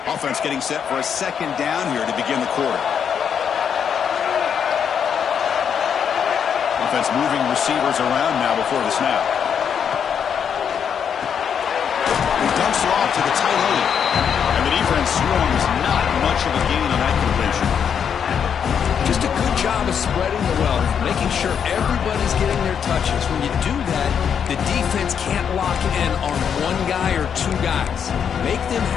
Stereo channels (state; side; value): quieter; right; 7.7 dB